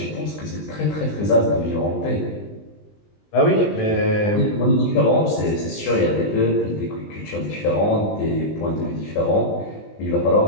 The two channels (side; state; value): right; late; 20 ms